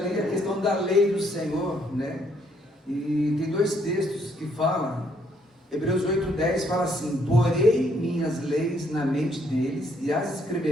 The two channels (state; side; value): normal; both; correlation 0.69